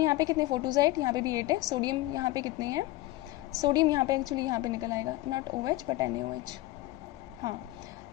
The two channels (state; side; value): quieter; right; 17.7 dB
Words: पे कितने, 4 2 ज़ा 8, यहाँ पे भी 8 है। सोडियम यहाँ पे कितने हैं, सोडियम यहाँ पे एक्चुअली यहाँ पे निकल आएगा, नॉट OH बट NaOH। हाँ,